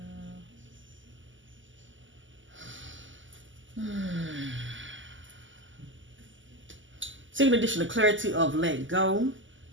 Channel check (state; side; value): late; left; 0.55 ms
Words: Seeking additional clarity of let go.